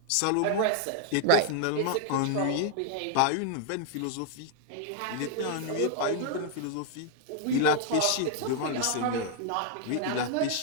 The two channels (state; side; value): different; both; correlation 0.00